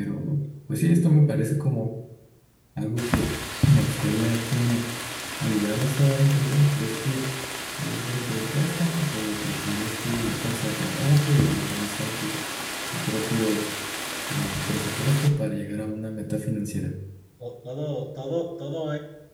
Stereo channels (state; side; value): identical; both; correlation 1.00